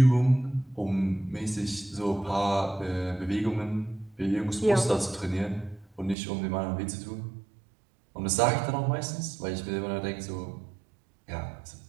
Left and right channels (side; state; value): left; drops out; at 6.2 s